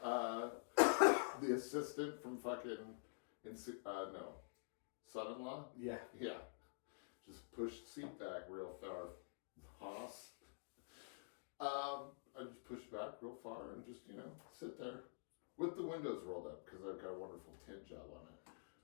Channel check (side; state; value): right; silent; digital silence